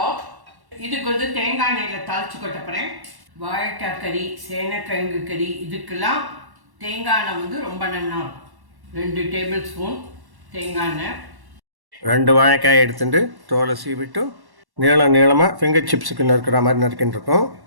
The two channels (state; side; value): late; left; 1.1 ms